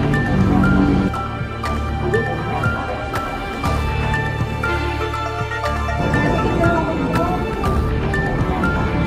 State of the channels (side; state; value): both; identical; correlation 1.00